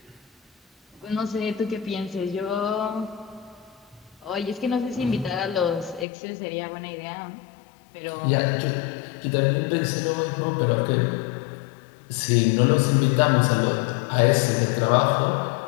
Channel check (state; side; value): drops out; right; at 6.1 s